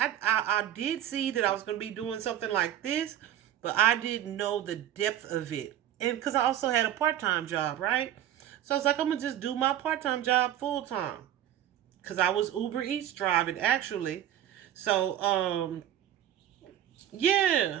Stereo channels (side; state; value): left; quieter; 11.6 dB